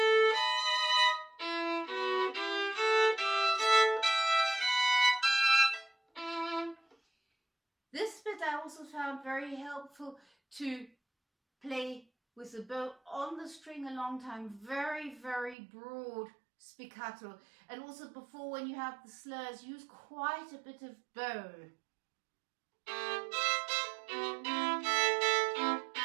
This bit I also found very helpful to play with the bow on the string a long time, very, very broad spiccato. And also before, when you have the slurs, use quite a bit of bow.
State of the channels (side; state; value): left; drops out; at 15.6 s